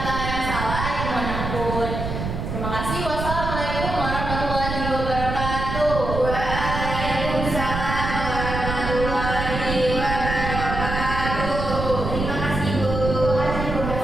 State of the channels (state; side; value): noise; right; rumble, 4 dB below the sound